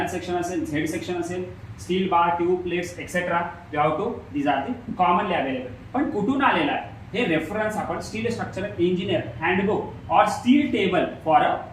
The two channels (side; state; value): both; identical; correlation 1.00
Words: सेक्शन असेल, Z सेक्शन असेल, steel bar, tube, plates etcetera. We have to these are the commonly available. पण कुठून आलेला आहे हे रेफरन्स आपण स्टील स्ट्रक्चरल इंजिनियर हँडबुक और steel table for a